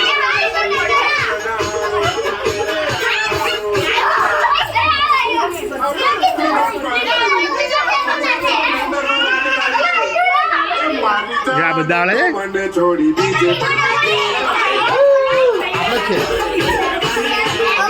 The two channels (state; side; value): identical; both; correlation 1.00